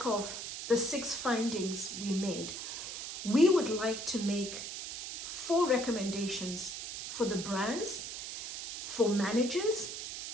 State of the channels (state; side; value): noise; right; hiss, 6 dB below the sound